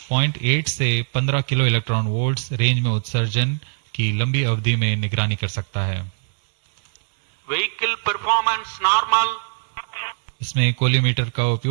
से 15 किलो इलेक्ट्रॉन वोल्ट्स रेंज में उत्सर्जन की लंबी अवधि में निगरानी कर सकता है। Vehicle performance normal. इसमें कोलीमीटर का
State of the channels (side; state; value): left; silent; 63 dB below the other